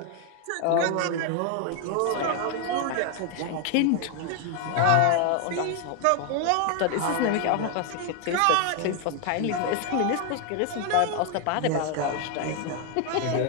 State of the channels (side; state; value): both; different; correlation 0.00